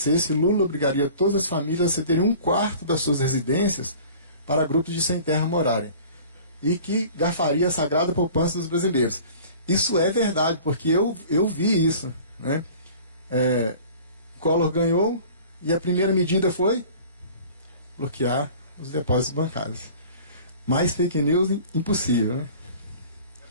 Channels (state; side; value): inverted; both; correlation -0.45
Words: Lula obrigaria todas as famílias a cederem 1/4 das suas residências para grupos de sem terra morarem, e que garfaria a sagrada poupança dos brasileiros. Isso é verdade, porque eu vi isso, né? Collor ganhou e a primeira medida foi bloquear os depósitos bancários. Mais fake news impossível, né?